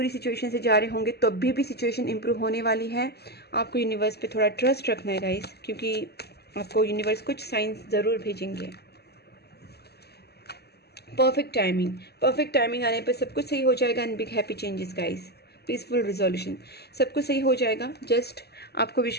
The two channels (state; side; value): late; right; 0.47 ms